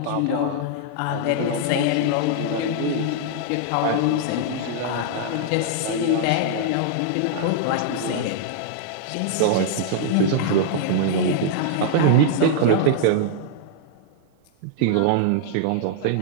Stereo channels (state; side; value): different; both; correlation -0.01